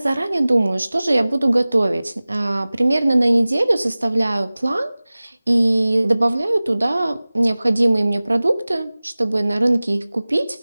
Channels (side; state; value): both; inverted; correlation -0.99